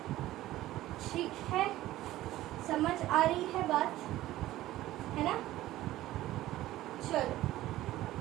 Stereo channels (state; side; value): quieter; left; 15.4 dB